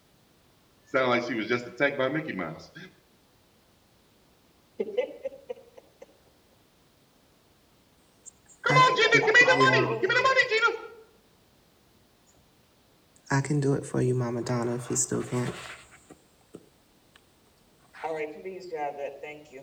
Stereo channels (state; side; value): identical; both; correlation 1.00